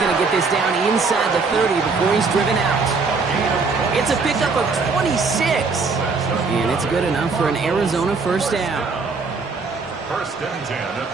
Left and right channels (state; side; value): quieter; left; 4.4 dB